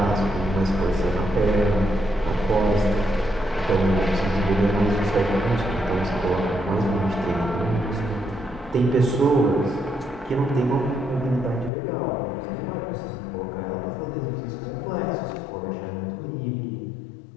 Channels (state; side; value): drops out; right; at 11.7 s